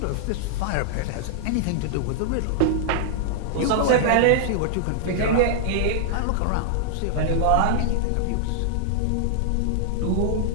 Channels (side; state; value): both; different; correlation -0.01